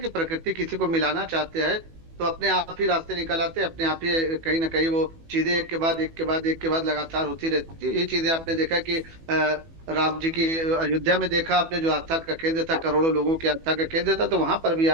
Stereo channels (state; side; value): late; left; 18 ms